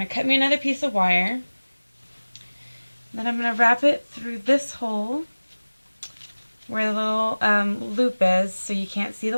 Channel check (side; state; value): both; inverted; correlation -1.00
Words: to cut me another piece of wire. Then I'm going to wrap it through this hole where the little loop is so you can't see